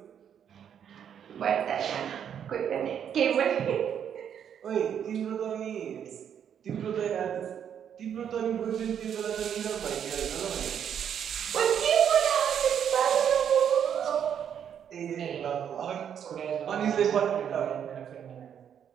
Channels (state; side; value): quieter; left; 8.7 dB